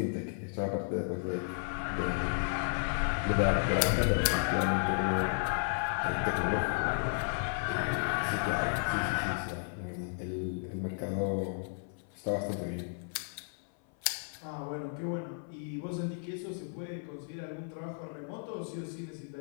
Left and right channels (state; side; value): silent; right; 55 dB below the other